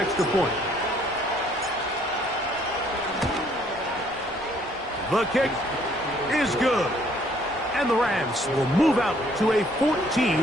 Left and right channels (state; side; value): normal; both; correlation 0.63